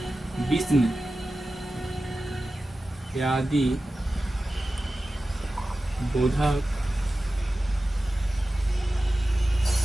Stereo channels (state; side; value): normal; both; correlation 0.94